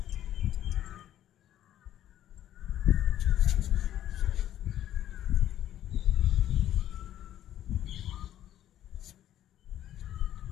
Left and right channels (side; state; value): right; quieter; 11.8 dB